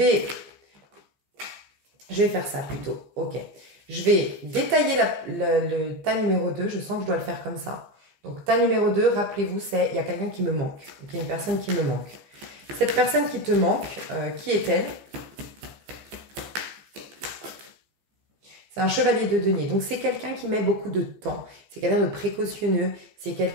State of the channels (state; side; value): late; left; 15 ms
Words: faire ça plutôt. Ok. Je vais détailler le tas numéro 2. Je sens que je dois le faire comme ça. Donc, tas numéro 2, rappelez-vous, c'est il y a quelqu'un qui me manque. Il y a une personne qui me manque. Cette personne qui te manque, qui est-elle? C'est un chevalier de denier. Donc, c'est quelqu'un qui met beaucoup de temps. C'est quelqu'un de précautionneux. C'est